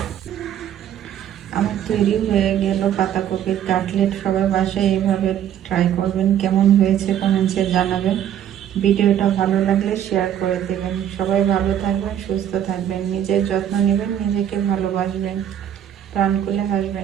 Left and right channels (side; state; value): left; quieter; 10.2 dB